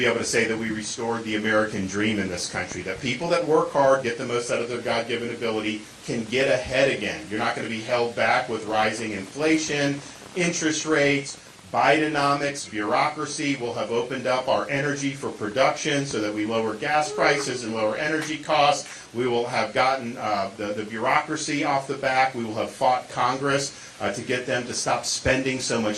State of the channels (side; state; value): both; identical; correlation 1.00